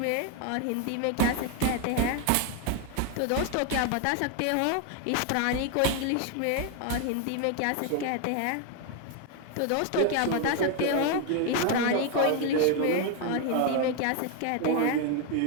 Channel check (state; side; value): different; both; correlation 0.01